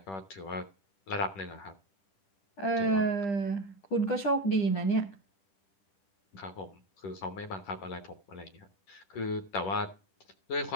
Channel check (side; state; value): right; late; 10 ms